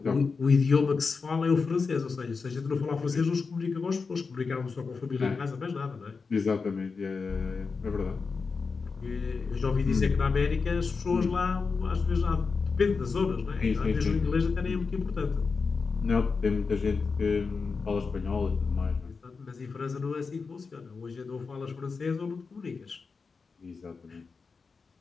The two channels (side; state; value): right; quieter; 4.8 dB